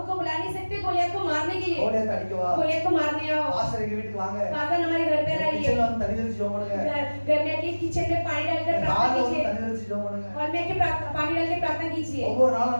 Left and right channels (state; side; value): inverted; both; correlation -1.00